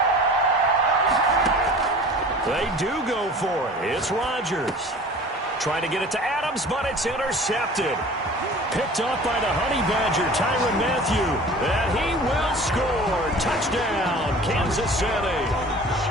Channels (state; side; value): normal; both; correlation 0.43